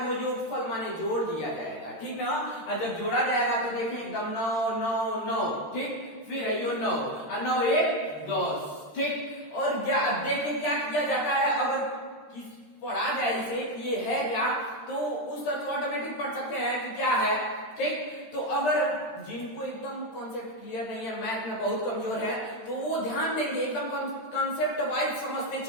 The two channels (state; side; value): late; right; 13 ms